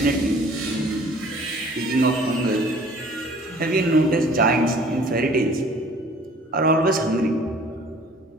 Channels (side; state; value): both; normal; correlation 0.52